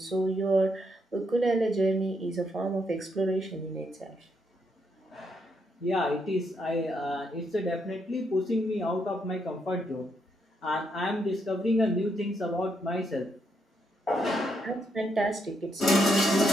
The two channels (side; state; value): both; normal; correlation 0.77